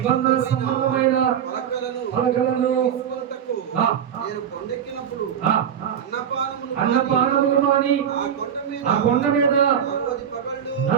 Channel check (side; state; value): left; quieter; 8.6 dB